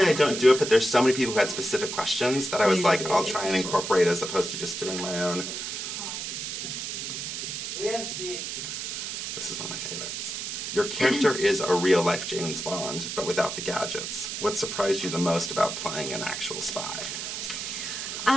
I don't do it, but there's so many people who had specific questions that I was like, I'll try and incorporate as opposed to just doing my own. This is one of my favorites. Your character is a real-life James Bond, but without the gadgets. What surprised you the most about playing an actual spy?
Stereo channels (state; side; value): noise; right; hiss, 5 dB below the sound